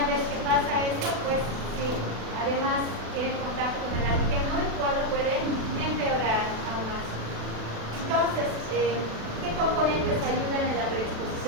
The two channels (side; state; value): left; late; 36 ms